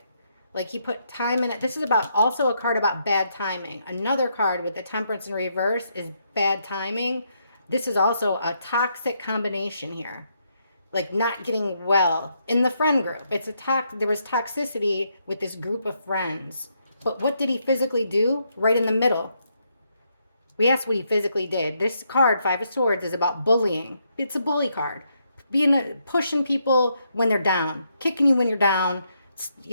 Like he put time in it. This is about also a card about bad timing. Another card with the Temperance in reverse is bad timing. This is also a toxic combination here, like not getting well in the friend group. There was toxicity with this group of friends. But what did he physically do? Right in the middle. We asked what he physically did. This card, Five of Swords, is about bullying. It's a bully card. Pushing people when they're down, kicking you when you're down,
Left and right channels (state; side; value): inverted; both; correlation -0.77